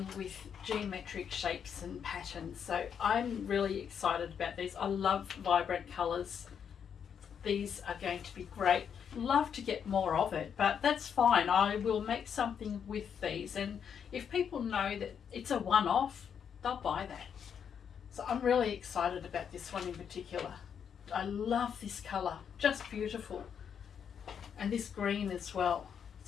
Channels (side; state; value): right; quieter; 7.7 dB